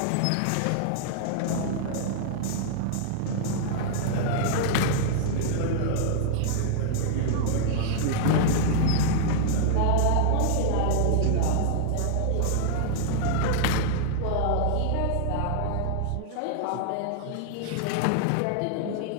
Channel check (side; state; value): both; different; correlation 0.00